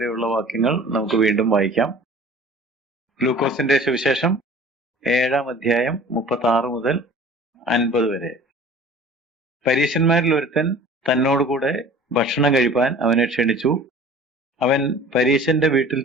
വാക്യങ്ങൾ നമുക്ക് വീണ്ടും വായിക്കാം. ലൂക്കോസിന്റെ സുവിശേഷം 7-ാം അധ്യായം 36 മുതൽ 50 വരെ. പരീശന്മാരിൽ ഒരുത്തൻ തന്നോടുകൂടെ ഭക്ഷണം കഴിപ്പാൻ അവനെ ക്ഷണിച്ചു. അവൻ പരീശന്റെ വീട്ടിൽ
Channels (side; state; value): both; normal; correlation 0.45